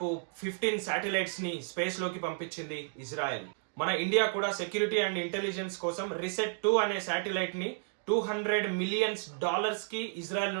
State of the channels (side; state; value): left; silent; 56 dB below the other